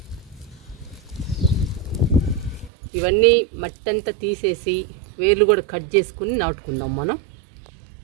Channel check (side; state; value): left; drops out; at 2.7 s